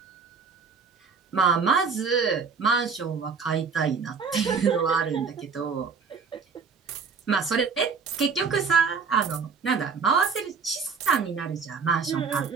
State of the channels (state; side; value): quieter; left; 5.4 dB